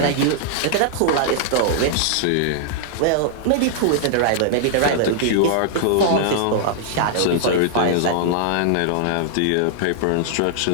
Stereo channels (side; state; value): both; different; correlation -0.01